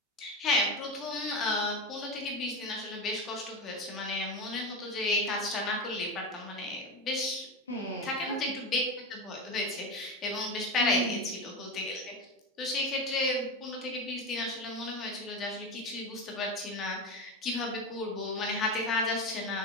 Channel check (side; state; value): both; normal; correlation 0.19